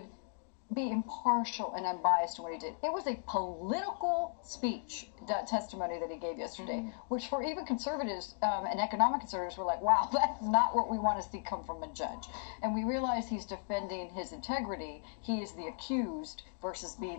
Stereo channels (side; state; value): right; silent; digital silence